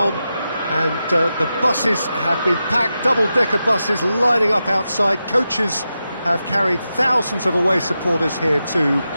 and the buses have been packed, double-decker buses lining up outside, coaches have carried thousands of away supporters here too,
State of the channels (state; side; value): inverted; both; correlation -0.89